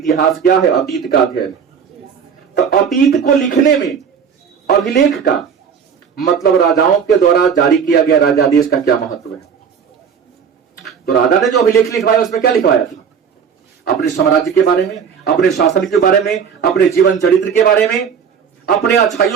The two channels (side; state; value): left; quieter; 7.0 dB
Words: क्या है? अतीत का अध्ययन। तो अतीत को लिखने में अभिलेख का मतलब राजाओं के द्वारा जारी किया गया राजादेश का क्या महत्व है? तो राजा ने जो अभिलेख लिखवाया उसमें क्या लिखवाया था? अपने साम्राज्य के बारे में, अपने शासन के बारे में, अपने जीवन चरित्र के बारे में, अपने